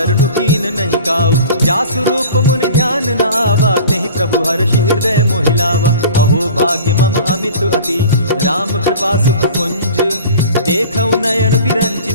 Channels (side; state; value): both; inverted; correlation -0.41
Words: कीन नहीं काऊ। जासु रूप मुनि ध्यान न आवा, तेहि प्रभु हर्षि हृदय मोहिलावा। अहो भाग्य मम अमित अति, राम कृपा सुख पुंज। देखऊ नयन बिरंचि